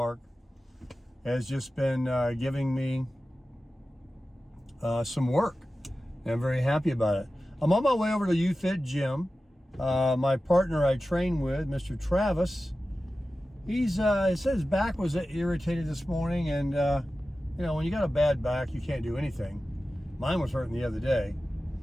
has just been giving me some work, and I'm very happy about it. I'm on my way over to UFit Gym. My partner I train with, Mr. Travis, he said his back was irritated this morning, and you know, when you got a bad back, you can't do anything. Mine was hurting the other day.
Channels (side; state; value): both; normal; correlation 0.94